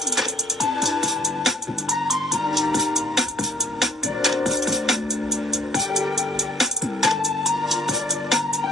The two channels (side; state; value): both; normal; correlation 0.58